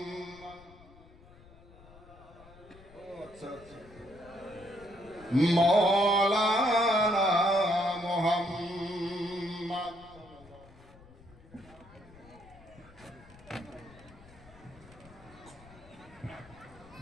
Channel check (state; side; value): noise; left; rumble, 22 dB below the sound